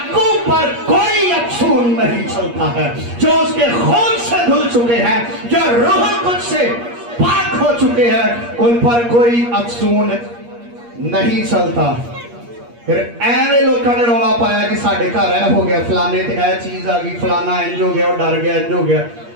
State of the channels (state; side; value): late; left; 8.5 ms